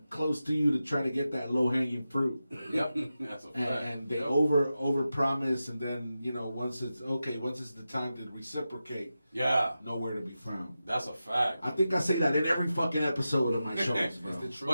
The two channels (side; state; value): both; inverted; correlation -0.92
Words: close to you to try to get that low hanging fruit. Yep, that's a fact. And they over promise, and then once it's the time to reciprocate. Yeah, nowhere to be found. That's a fact. I think I say that in every fucking episode of my shows, bro.